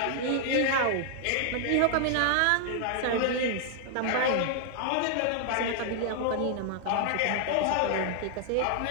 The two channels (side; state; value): both; different; correlation 0.00